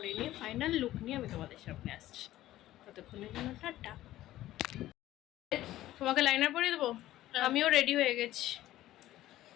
নিয়ে ফাইনাল লুক নিয়ে আমি তোমাদের সামনে আসছি। ততক্ষণের জন্য টাটা। তোমাকে লাইনার পরিয়ে দেবো? আমিও রেডি হয়ে গেছি,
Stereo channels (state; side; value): quieter; right; 14.7 dB